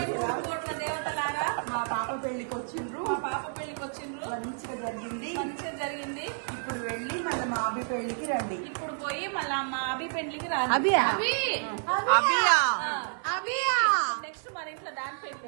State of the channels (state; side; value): silent; left; digital silence